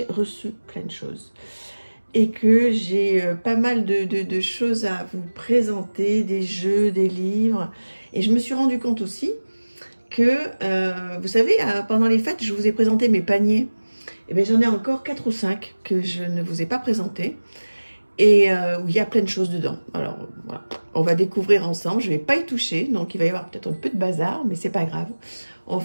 reçu plein de choses et que j'ai pas mal de choses à vous présenter, des jeux, des livres. Et je me suis rendu compte aussi que, vous savez, pendant les fêtes, je vous ai présenté mes paniers. Et bien, j'en ai encore 4 ou 5 que je ne vous ai pas présentés et où il y a plein de choses dedans. Alors, voilà, on va découvrir ensemble. Je ne vais pas y toucher, donc il va y avoir peut-être un peu de bazar, mais c'est pas grave. On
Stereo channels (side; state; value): both; inverted; correlation -1.00